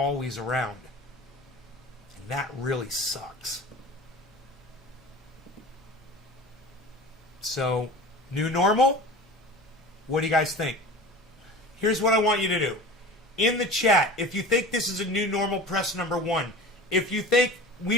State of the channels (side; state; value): both; normal; correlation 0.36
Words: around. And that really sucks. So, new normal? What do you guys think? Here's what I want you to do. In the chat, if you think this is a new normal, press number 1. If you think